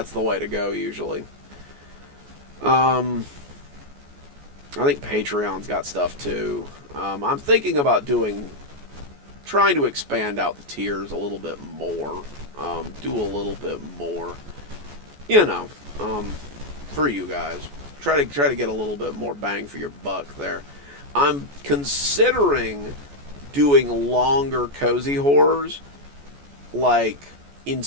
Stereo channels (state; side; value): late; left; 14 ms